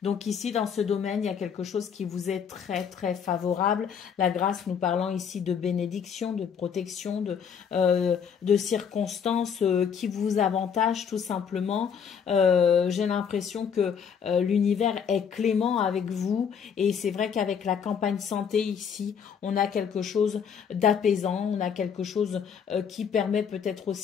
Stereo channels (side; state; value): right; quieter; 7.2 dB